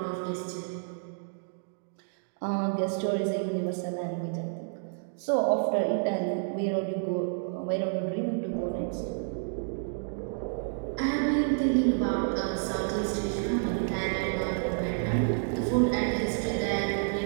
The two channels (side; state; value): left; silent; digital silence